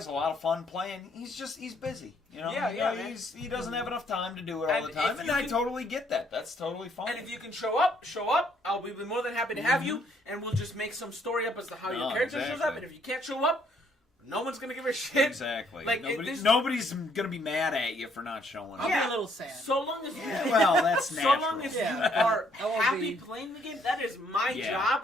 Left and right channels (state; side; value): normal; both; correlation 0.67